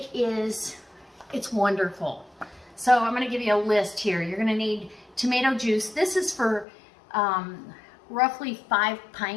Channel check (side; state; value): right; drops out; at 6.7 s